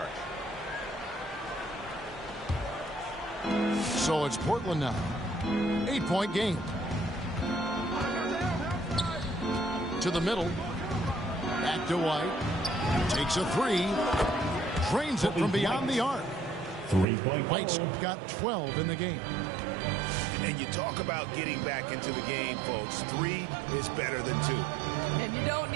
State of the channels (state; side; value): drops out; left; at 17.1 s